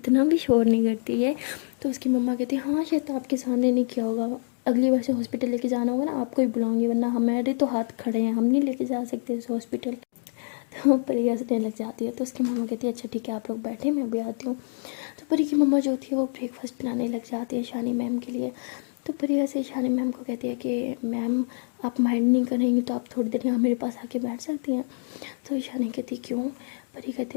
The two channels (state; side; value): silent; right; digital silence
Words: भी शोर नहीं करती है। तो उसकी मम्मा कहती हाँ शायद आपके सामने नहीं किया होगा, अगली बार से हॉस्पिटल लेके जाना होगा ना आपको ही बुलाऊंगी, वरना हमारे तो हाथ खड़े हैं, हम नहीं लेके जा सकते इस हॉस्पिटल। तो परी हंसने लग जाती है। तो उसकी मम्मा कहती है अच्छा ठीक है आप लोग बैठे मैं भी आती हूँ। तो परी की मम्मा जो होती है वो ब्रेकफास्ट बनाने लग जाती है ईशानी मैम के लिए। तो परी ऐसे ईशानी मैम को कहती है कि मैम आप माइंड नहीं करेंगी तो आप थोड़ी देर यहाँ मेरे पास आके बैठ सकती हैं। तो ईशानी कहती क्यों। परी कहती